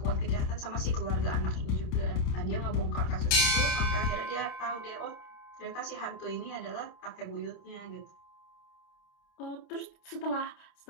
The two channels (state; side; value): late; right; 28 ms